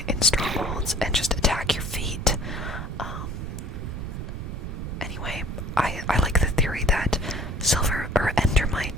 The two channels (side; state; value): right; noise; rumble, 6 dB below the sound